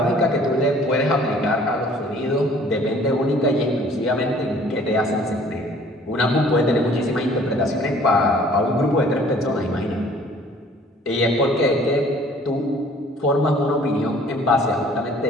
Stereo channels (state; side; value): normal; both; correlation 0.54